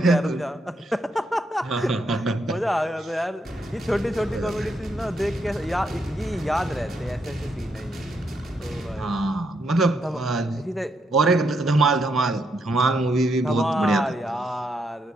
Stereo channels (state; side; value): normal; both; correlation 0.78